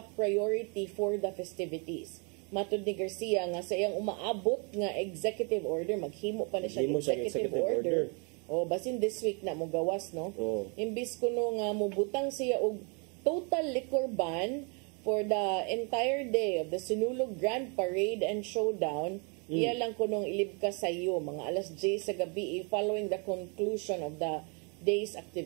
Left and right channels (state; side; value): quieter; left; 35.5 dB